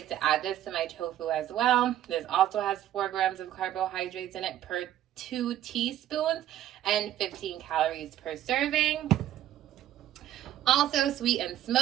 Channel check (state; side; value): quieter; left; 12.3 dB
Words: to add this to my tofu as well. This also has 4 grams of carbohydrates in it per 2 teaspoons and 15 calories per serving. Also, sweet and